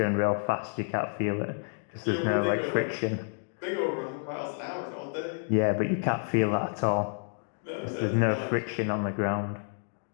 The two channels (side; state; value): right; silent; 58 dB below the other